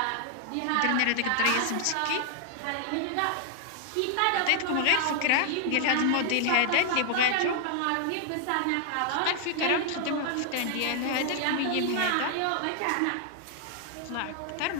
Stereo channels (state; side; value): different; both; correlation 0.00